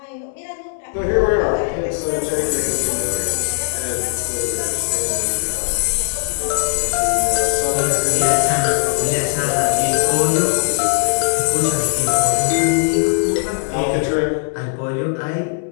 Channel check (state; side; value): silent; right; 67 dB below the other